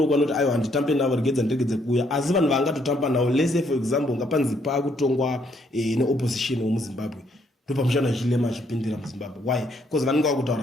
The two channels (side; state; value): both; normal; correlation 0.70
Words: kwanoti aiwa handitambe navo regedza ndiregedze kuuya, asi vanhu vangatotamba nawo lese for example ngapanzi pakutongwa neopposition womuZimbabwe ndo pamushana Hichilema achipindira muZimbabwe. Why? Because vanenge